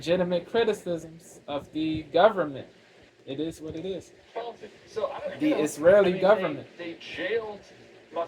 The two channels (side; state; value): both; identical; correlation 1.00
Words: criticisms of the government. It is what it is. faulty. So I don't, The you know, Israeli I mean, government. They jailed